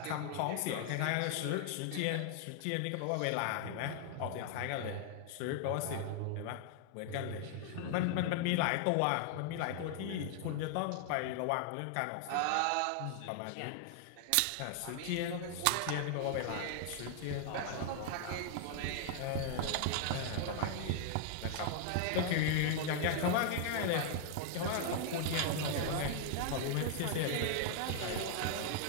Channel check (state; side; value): different; both; correlation 0.00